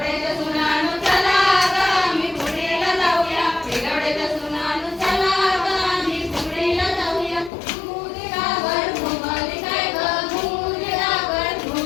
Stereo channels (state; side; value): drops out; right; at 7.5 s